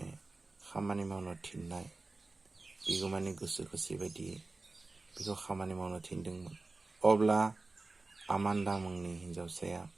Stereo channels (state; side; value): quieter; left; 3.4 dB